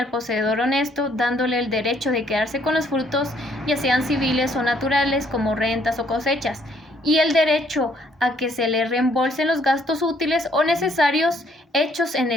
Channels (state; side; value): normal; both; correlation 0.66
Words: poseedor honesto, dándole el derecho de quedarse con los frutos, ya sean civiles o naturales, como rentas o cosechas, y el derecho a que se le reembolsen los gastos útiles o necesarios hechos en